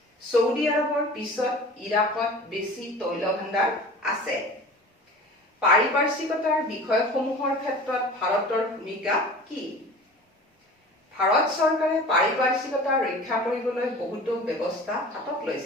ছৌদি আৰবৰ পিছত ইৰাকত বেছি তৈল ভাণ্ডাৰ আছে। পাৰিপাৰ্শ্বিকতাৰ বিষয়সমূহৰ ক্ষেত্ৰত ভাৰতৰ ভূমিকা কি? ভাৰত চৰকাৰে পাৰিপাৰ্শ্বিকতা ৰক্ষা কৰিবলৈ বহুতো ব্যৱস্থা হাতত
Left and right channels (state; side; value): normal; both; correlation 0.40